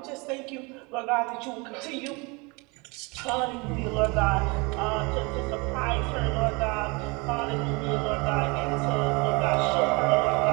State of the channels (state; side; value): quieter; left; 28.0 dB